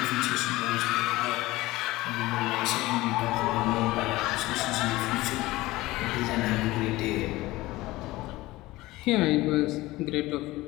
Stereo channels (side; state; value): right; quieter; 18.9 dB